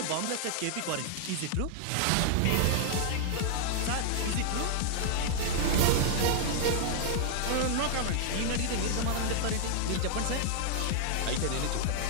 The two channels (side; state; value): both; different; correlation -0.01